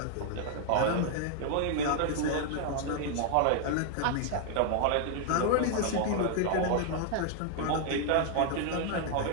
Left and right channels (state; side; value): different; both; correlation 0.00